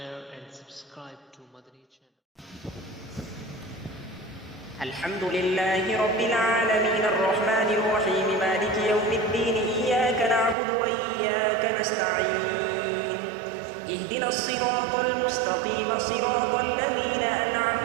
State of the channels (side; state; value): left; drops out; at 10.6 s